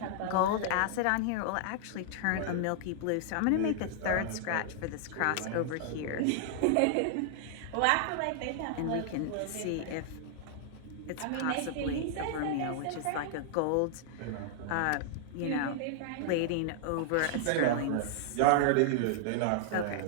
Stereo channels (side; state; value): both; different; correlation -0.01